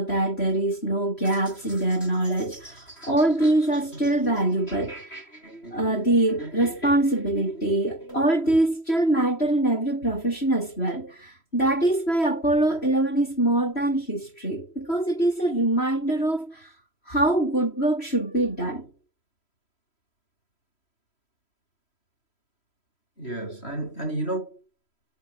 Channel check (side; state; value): right; late; 3.1 ms